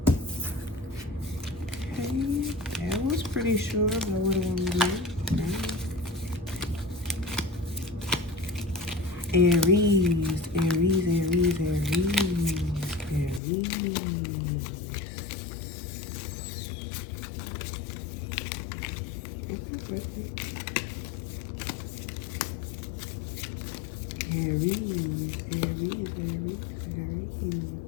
that was pretty sure about what I want to do. Aries.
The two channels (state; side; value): drops out; right; at 13.4 s